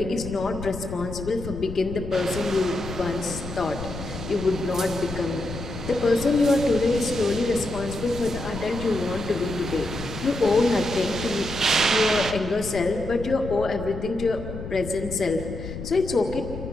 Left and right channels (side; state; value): left; noise; rumble, 9 dB below the sound